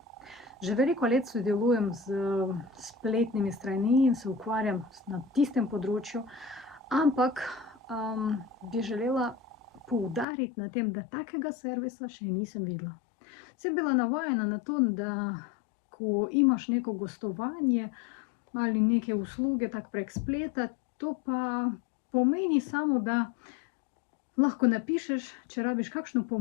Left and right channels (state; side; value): drops out; right; at 10.2 s